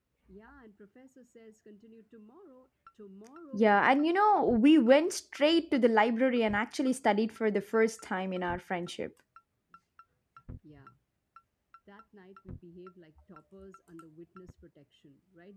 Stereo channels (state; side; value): identical; both; correlation 1.00